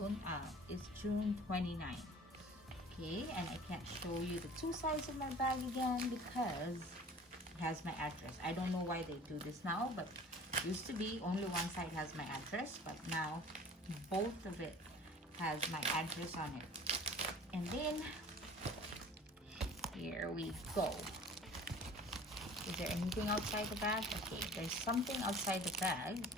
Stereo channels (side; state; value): both; normal; correlation 0.45